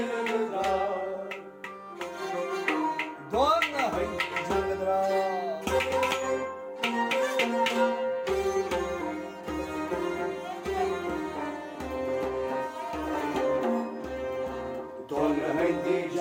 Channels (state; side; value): identical; both; correlation 1.00